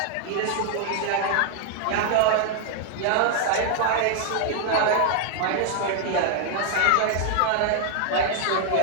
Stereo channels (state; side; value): different; both; correlation 0.00